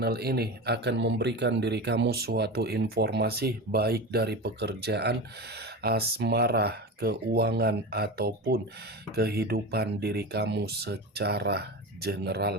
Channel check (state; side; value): normal; both; correlation 0.25